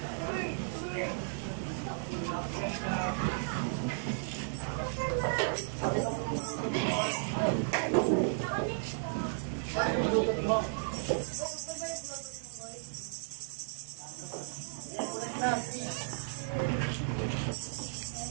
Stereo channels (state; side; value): silent; left; digital silence